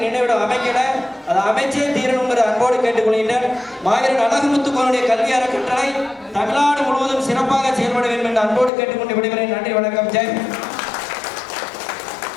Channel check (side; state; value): right; drops out; at 8.7 s